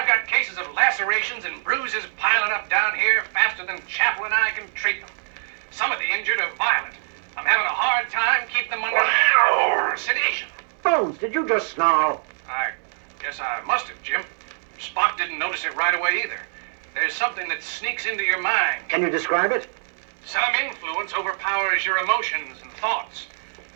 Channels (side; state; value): left; silent; digital silence